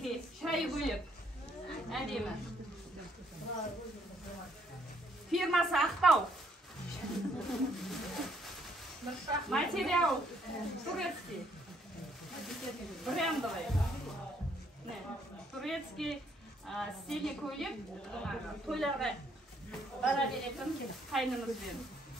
шай бөлек. Әдемі. Фирмасы Ақтау. Материал турецкий. Брендовый. Турецкий стильный көйлек. Тойларға бара беретін қайнымызбен.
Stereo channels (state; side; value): normal; both; correlation 0.68